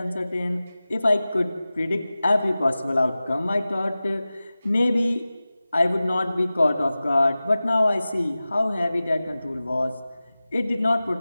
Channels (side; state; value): both; inverted; correlation -0.96